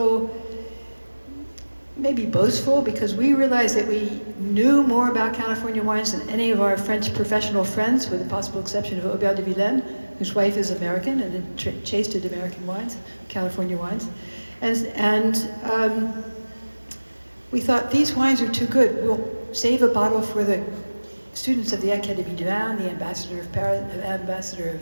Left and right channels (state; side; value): inverted; both; correlation -1.00